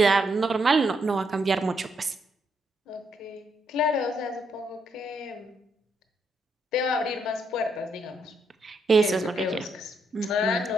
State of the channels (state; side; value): normal; both; correlation 0.77